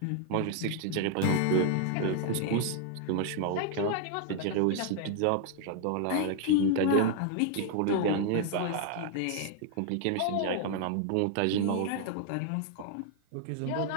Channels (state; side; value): different; both; correlation 0.00